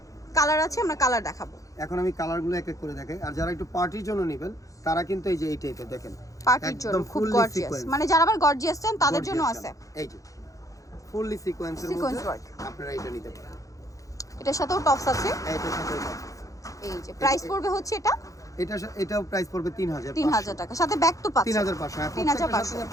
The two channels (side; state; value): right; late; 0.16 ms